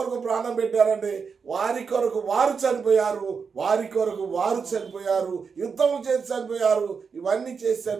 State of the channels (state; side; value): quieter; left; 5.7 dB